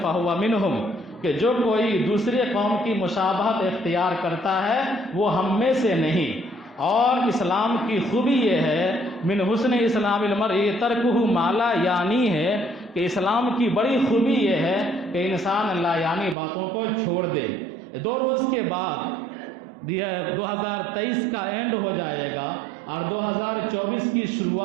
فہو منہم، کہ جو کوئی دوسرے قوم کی مشابہت اختیار کرتا ہے وہ ہم میں سے نہیں۔ اور اسلام کی خوبی یہ ہے من حسن اسلام المرء ترکہ ما لا یعنی ہے، کہ اسلام کی بڑی خوبی یہ ہے کہ انسان لا یعنی باتوں کو چھوڑ دے۔ 2 روز کے بعد 2023 کا اینڈ ہو جائے گا اور 2024 کی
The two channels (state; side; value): drops out; left; at 16.4 s